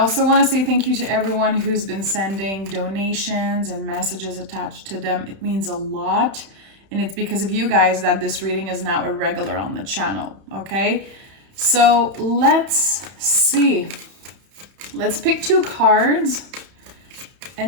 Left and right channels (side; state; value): left; late; 31 ms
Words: want to say thank you to everyone who's been sending donations and messages attached to them. It means a lot. And it's because of you guys that this reading is now a regular on the channel, okay? So let's see. Let's pick two cards